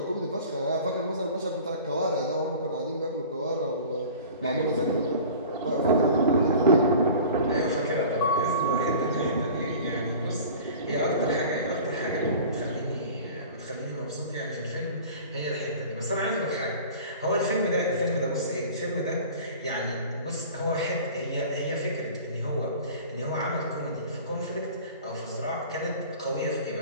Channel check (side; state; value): both; inverted; correlation -0.41